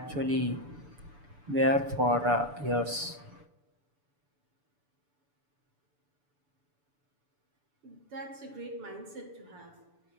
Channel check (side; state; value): left; late; 6.9 ms